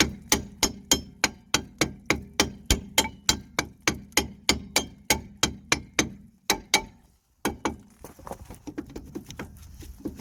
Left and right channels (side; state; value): both; identical; correlation 1.00